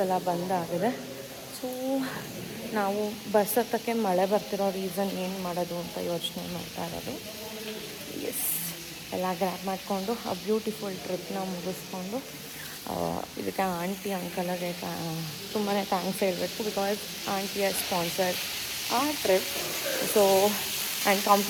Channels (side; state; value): both; identical; correlation 1.00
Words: ಎಲ್ಲ ಬಂದಾಗಿದೆ. ಸೊ ನಾವು ಬಸ್ ಹತ್ತಕ್ಕೆ ಮಳೆ ಬರ್ತಿರೋ ರೀಸನ್ ಏನು ಮಾಡೋದು ಅಂತ ಯೋಚನೆ ಮಾಡ್ತಾ ಇರೋದು. ಎಸ್, ಎಲ್ಲ ಗ್ರ್ಯಾಬ್ ಮಾಡಿಕೊಂಡು ಆ ಬ್ಯೂಟಿಫುಲ್ ಟ್ರಿಪ್ನ ಮುಗಿಸ್ಕೊಂಡು ಇದಕ್ಕೆ ಆಂಟಿ ಅಂಕಲ್ಗೆ ತುಂಬಾ ಥ್ಯಾಂಕ್ಸ್ ಹೇಳಬೇಕು. ಬಿಕಾಸ್ ಆಂಟಿಯ ಸ್ಪಾನ್ಸರ್ ಆ ಟ್ರಿಪ್. ಸೊ ಆ್ಯಂಡ್